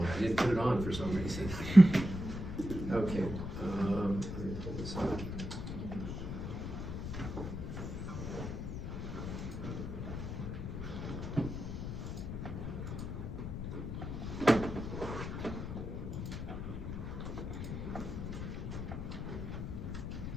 I didn't put it on for some reason. Okay, let me pull this up.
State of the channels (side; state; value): left; noise; rumble, 5 dB below the sound